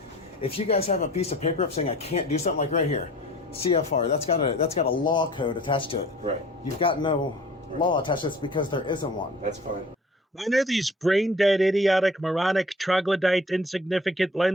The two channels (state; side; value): normal; both; correlation 0.47